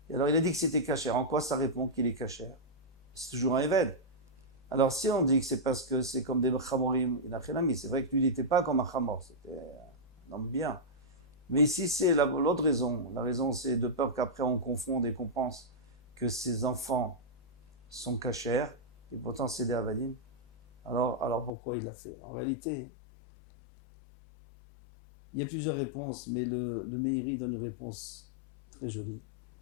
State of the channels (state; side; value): drops out; right; at 21.5 s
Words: Et alors, il a dit que c'était Kacher. En quoi ça répond qu'il est Kacher? C'est toujours un Eved. Alors, si on dit que c'est parce que c'est comme des chamorim, c'est vrai que lui, il n'était pas comme un chamor, c'était un homme bien. Mais ici, c'est l'autre raison. La raison, c'est de peur qu'après on confonde et qu'on pense que ces enfants sont cachers, et pourtant c'est des avadim. Alors pourquoi il l'a fait? En réalité, il y a plusieurs réponses, mais le Meiri donne une réponse très jolie.